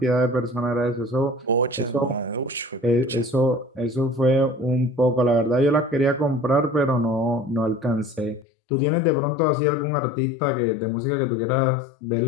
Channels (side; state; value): right; drops out; at 8.5 s